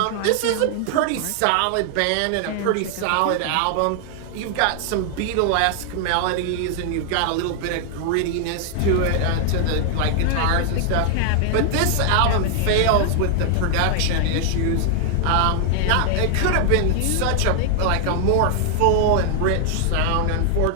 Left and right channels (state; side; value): different; both; correlation 0.00